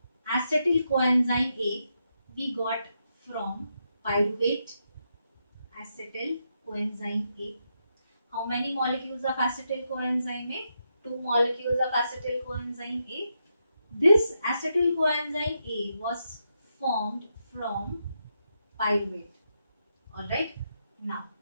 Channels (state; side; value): inverted; both; correlation -0.83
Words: acetyl coenzyme A we got from pyruvate. Acetyl coenzyme A. How many molecules of acetyl coenzyme A? 2 molecules of acetyl coenzyme A. This acetyl coenzyme A was formed from pyruvate. Alright. Now,